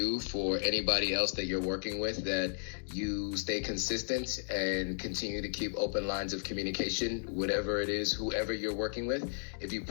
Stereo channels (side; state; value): right; silent; digital silence